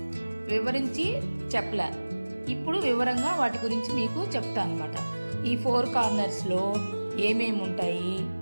వివరించి చెప్పలే. ఇప్పుడు వివరంగా వాటి గురించి మీకు చెప్తాను అన్నమాట. ఈ 4 కార్నర్స్లో ఏమేమి ఉంటాయి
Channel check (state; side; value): inverted; both; correlation -1.00